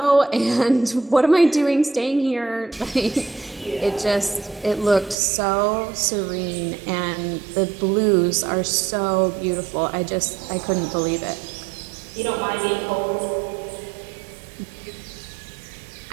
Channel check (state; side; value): drops out; left; at 5.2 s